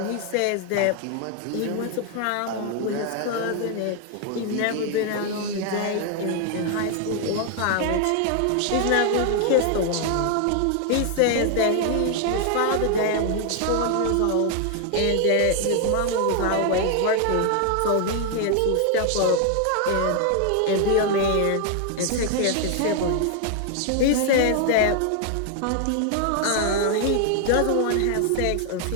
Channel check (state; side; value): different; both; correlation 0.00